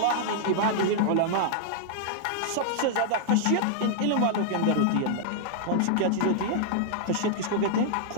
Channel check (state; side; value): different; both; correlation -0.01